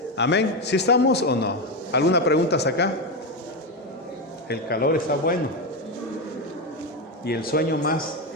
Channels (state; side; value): normal; both; correlation 0.12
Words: Amén. ¿Sí estamos o no? ¿Alguna pregunta acá? El calor está bueno. Y el sueño más.